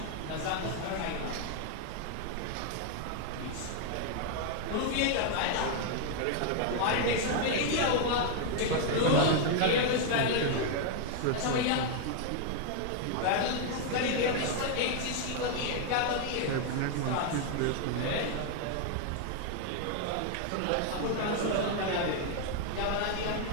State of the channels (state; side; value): different; both; correlation 0.00